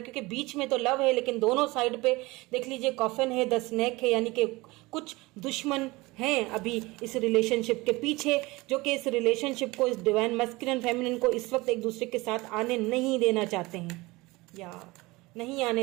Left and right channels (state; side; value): quieter; left; 22.0 dB